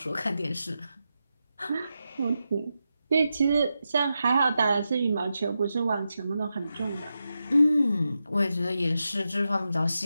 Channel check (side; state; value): both; inverted; correlation -0.89